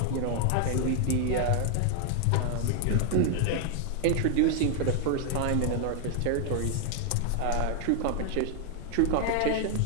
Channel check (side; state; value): both; different; correlation 0.00